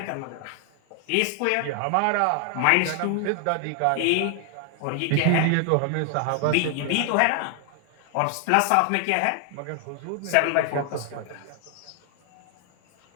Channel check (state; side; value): different; both; correlation 0.00